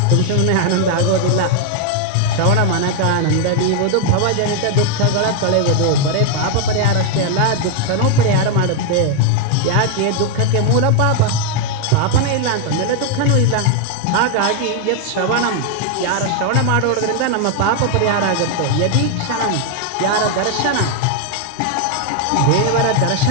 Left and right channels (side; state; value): both; different; correlation 0.00